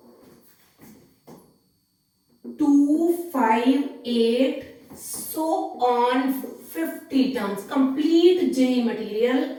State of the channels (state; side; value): identical; both; correlation 1.00